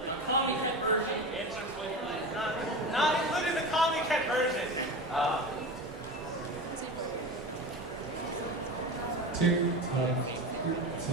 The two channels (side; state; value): both; normal; correlation 0.27